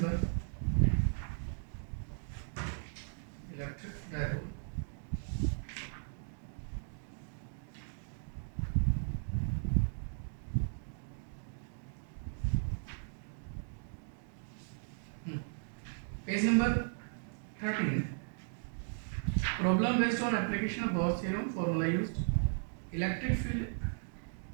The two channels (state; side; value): silent; left; digital silence